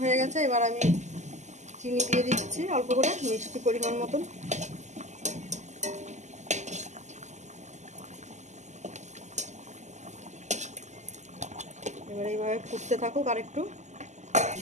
হয়ে গেছে, এবার আমি চিনি দিয়ে দিচ্ছি অল্প করে, মিষ্টি পরিমাণ মতন। এবার এইভাবে ফুটতে থাকুক আর একটু।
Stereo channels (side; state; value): left; late; 0.34 ms